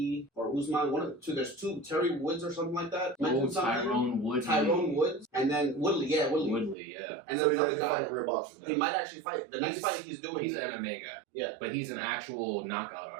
or Usman. One of the two. There's two. Terry Woods or something like that. Tyrone Woodley. Tyrone Woods, and then Woodley. Yeah, Woodley. Woodley, yeah. And so then he's actually fighting real boxers. He might actually fight. The next fight he's doing. He's an MMA guy. Yeah, but he's an actual knockout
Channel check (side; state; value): left; drops out; at 6.8 s